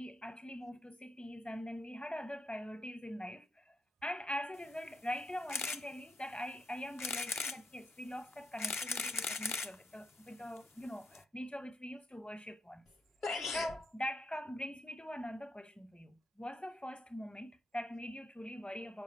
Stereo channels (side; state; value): both; normal; correlation 0.82